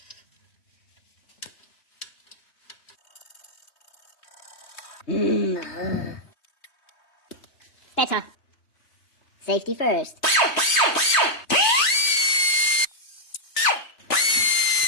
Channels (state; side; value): late; right; 3.2 ms